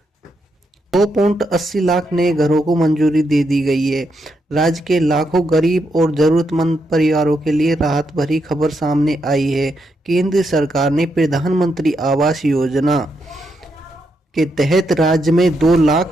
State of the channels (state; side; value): normal; both; correlation 0.81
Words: 2.80 लाख नए घरों को मंजूरी दे दी गई है। राज्य के लाखों गरीब और जरूरतमंद परिवारों के लिए राहत भरी खबर सामने आई है। केंद्र सरकार ने प्रधानमंत्री आवास योजना के तहत राज्य में